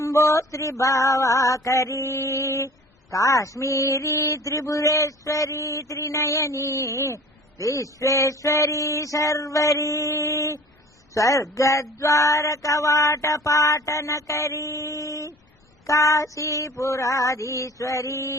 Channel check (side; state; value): both; normal; correlation 0.44